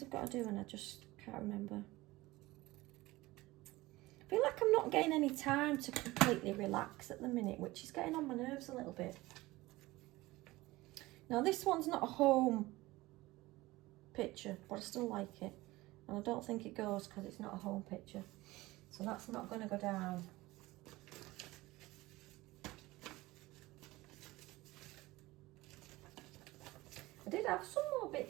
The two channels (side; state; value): left; quieter; 19.5 dB